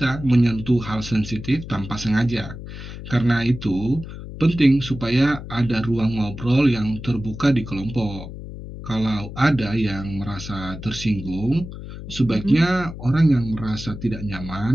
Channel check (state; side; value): noise; left; hum, 11 dB below the sound